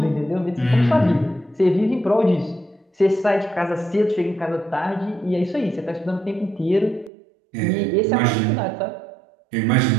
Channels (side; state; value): left; drops out; at 7.1 s